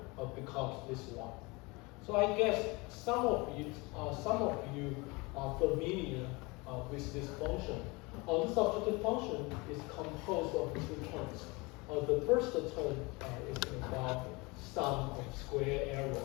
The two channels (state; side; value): quieter; right; 25.8 dB